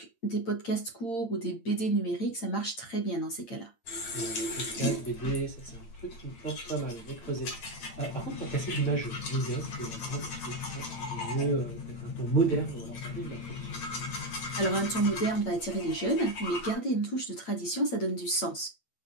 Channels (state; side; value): late; right; 8.8 ms